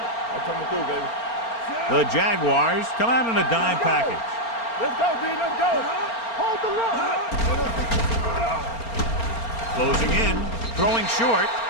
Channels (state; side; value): late; right; 4.3 ms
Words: I'm coming through, baby. The Jaguars come out in a dime package. Let's go, D. Let's go. Hold the look. Closing in. Throwing short.